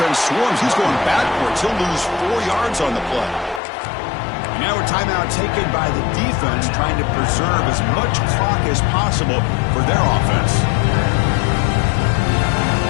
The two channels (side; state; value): right; drops out; at 3.6 s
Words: swarms. He's going backwards. He'll lose 4 yards on the play. And now a timeout taken by the defense, trying to preserve as much clock as possible for their offense.